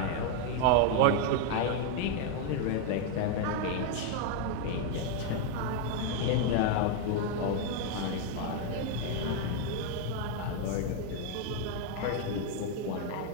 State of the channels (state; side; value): different; both; correlation 0.01